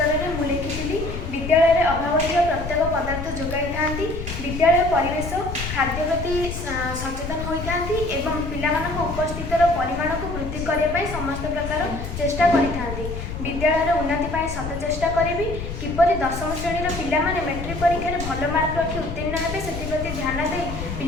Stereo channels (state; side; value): noise; left; rumble, 7 dB below the sound